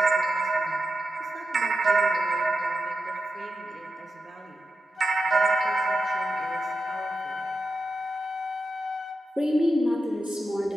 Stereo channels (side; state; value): both; normal; correlation 0.90